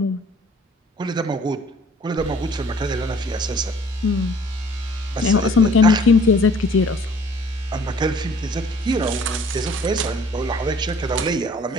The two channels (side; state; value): both; normal; correlation 0.54